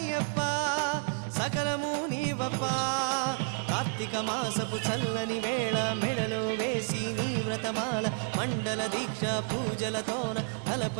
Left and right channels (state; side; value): silent; left; 56 dB below the other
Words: సకలము నీవప్ప కార్తీక మాసపు చల్లని వేళ మెడలో వేసి నీ వ్రతమాల మండల దీక్ష పూజలతోన